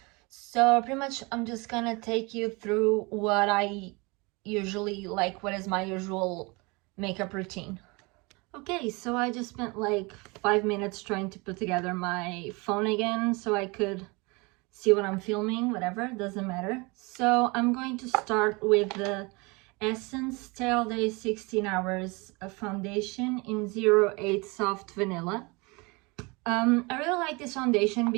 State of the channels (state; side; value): quieter; left; 27.1 dB